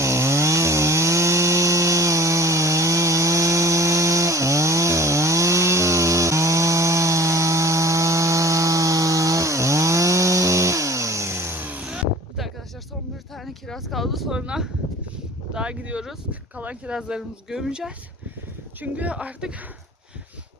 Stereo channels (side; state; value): both; normal; correlation 0.46